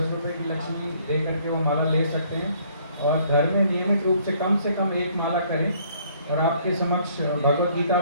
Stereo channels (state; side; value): inverted; both; correlation -0.62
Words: रुपये की लक्ष्मी दे करके वो माला ले सकते हैं और घर में नियमित रूप से कम 1 माला करें। और आपके समक्ष भगवत गीता